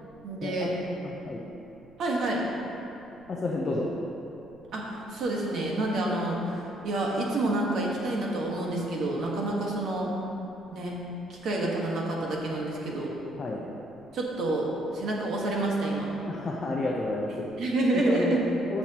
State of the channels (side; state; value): right; noise; rumble, 27 dB below the sound